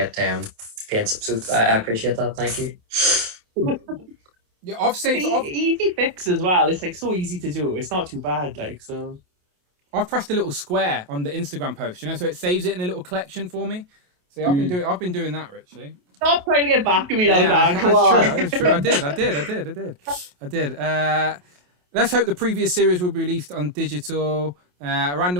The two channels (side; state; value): left; late; 28 ms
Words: paints. So I appreciate that. Thank you. Yeah, I've saved easy fix as well. It's like so easy to do. It's not too bad. Like so. I've pressed a little square on the Instagram post, so it saves it in a little collection for me. See, I've been doing that, Richie. Stop trying to get back at me now, Dan. Come on. It's true. I did. Let's hope the previous series will be released on digital. A